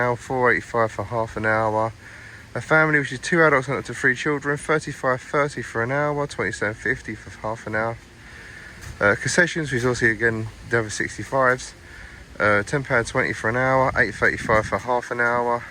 £4.85 for half an hour. A family, which is 2 adults and up to 3 children, £35.30 for an hour, £27.50 for half an hour. Concessions, which is also again the over 65s, £10.20 for an hour, £8.35 for half an hour.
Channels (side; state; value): both; identical; correlation 1.00